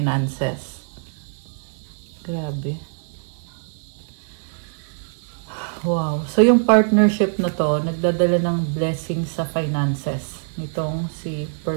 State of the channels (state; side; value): silent; left; digital silence